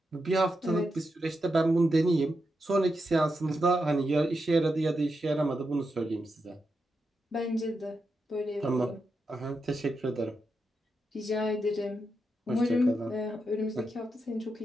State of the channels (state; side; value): normal; both; correlation 0.86